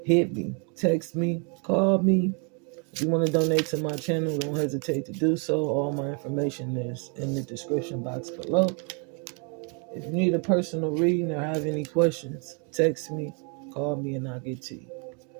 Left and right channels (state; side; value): quieter; left; 36.7 dB